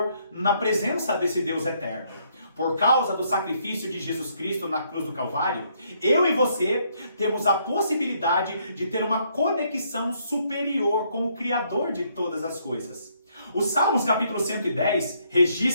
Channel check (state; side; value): inverted; both; correlation -0.70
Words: na presença desse Deus eterno. Por causa do sacrifício de Jesus Cristo na cruz do Calvário, eu e você temos a possibilidade de ter uma conexão superior com o Criador de todas as coisas. O Salmos capítulo 110